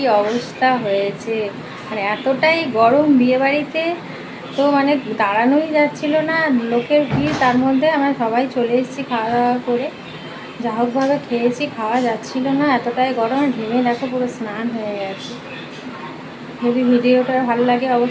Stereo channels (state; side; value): identical; both; correlation 1.00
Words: অবস্থা হয়েছে, মানে এতটাই গরম বিয়ে বাড়িতে, তো মানে দাঁড়ানোই যাচ্ছিল না, লোকের ভিড়। তার মধ্যে আমরা সবাই চলে এসেছি খাওয়া দাওয়া করে। যা হোকভাবে খেয়েছি, খাওয়া যাচ্ছিল না, এতটাই গরম। ঘেমে দেখো পুরো স্নান হয়ে গেছে। যদি ভিডিওটা ভালো লাগে